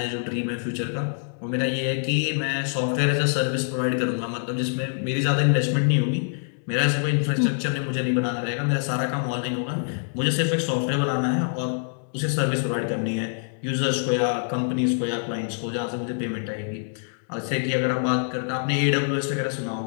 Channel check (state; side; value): silent; right; digital silence